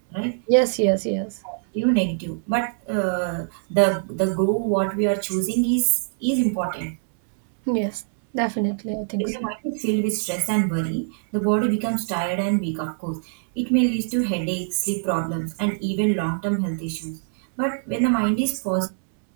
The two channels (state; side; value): silent; left; 63 dB below the other